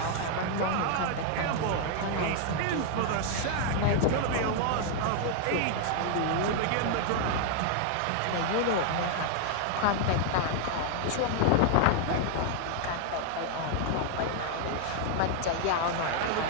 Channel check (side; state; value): both; different; correlation 0.00